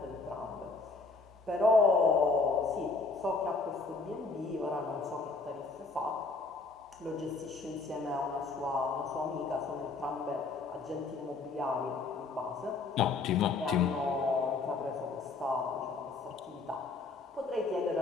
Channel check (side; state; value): right; quieter; 4.0 dB